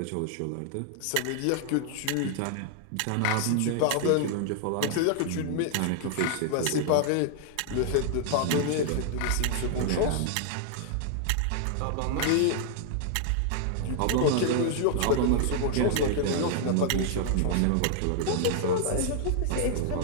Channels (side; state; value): both; different; correlation 0.00